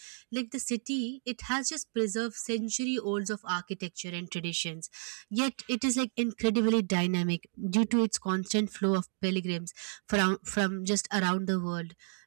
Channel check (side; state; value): left; silent; digital silence